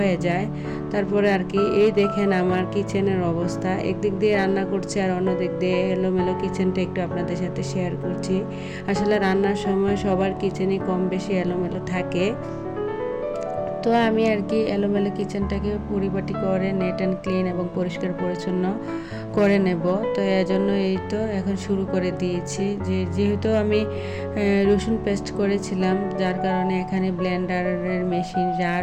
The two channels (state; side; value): identical; both; correlation 1.00